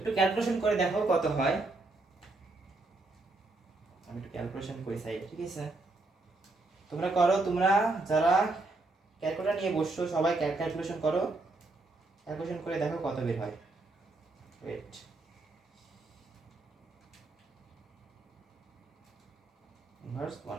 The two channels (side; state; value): left; quieter; 3.2 dB